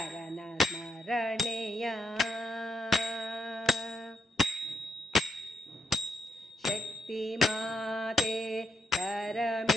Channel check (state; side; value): normal; both; correlation 0.79